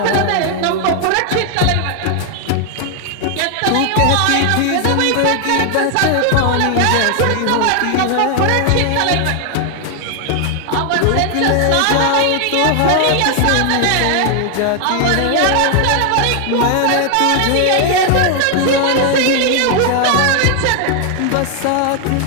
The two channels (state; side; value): different; both; correlation 0.00